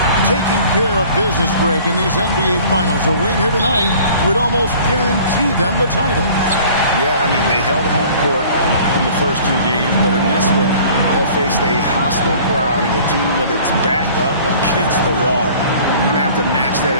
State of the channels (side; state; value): both; inverted; correlation -0.49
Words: taking care of business, Greg, in these NBA Finals. A win here tonight would almost guarantee them the title. Yeah, I mean, they held home court in the first two games, but in this one, they'll face a hostile crowd and a team with its back up against the wall. They're going to have to match that